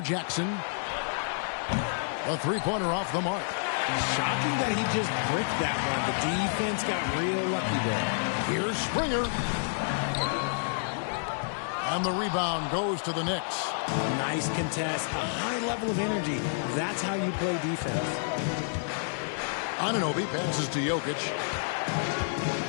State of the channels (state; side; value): silent; right; digital silence